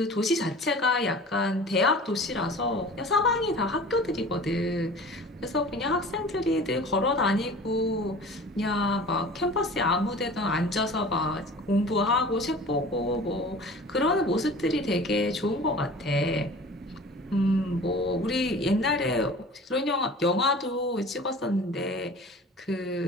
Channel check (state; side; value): normal; both; correlation 0.41